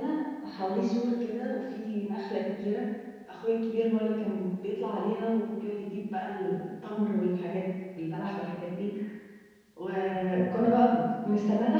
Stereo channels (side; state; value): both; identical; correlation 1.00